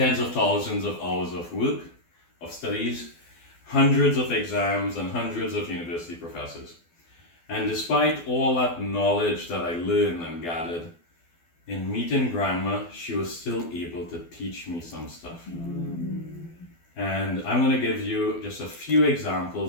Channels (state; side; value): late; right; 12 ms